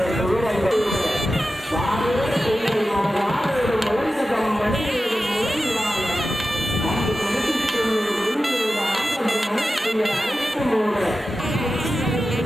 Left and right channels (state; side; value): normal; both; correlation 0.93